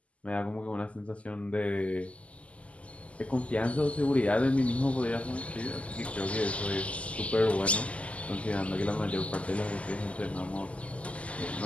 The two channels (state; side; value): late; right; 0.063 ms